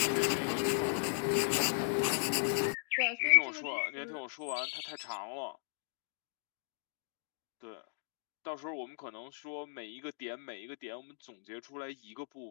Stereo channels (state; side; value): silent; right; digital silence